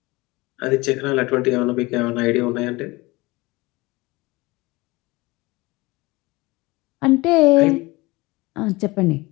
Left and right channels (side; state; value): right; quieter; 22.5 dB